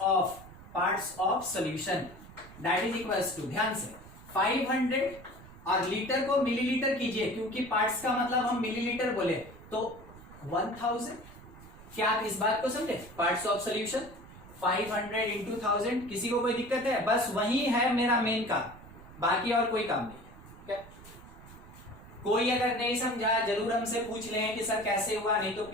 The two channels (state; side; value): noise; right; rumble, 18 dB below the sound